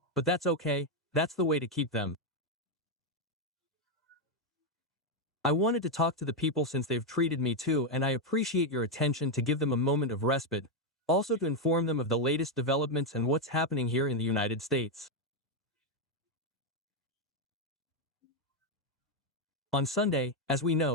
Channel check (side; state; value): both; normal; correlation 0.03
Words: But that's okay, that's the way to keep them. I wanted to talk to the people since they've treated me too, and I appreciate your attention to give them a moment of respite, also to inform them of the latest developments and what's happening here in the United States. On Sunday, as we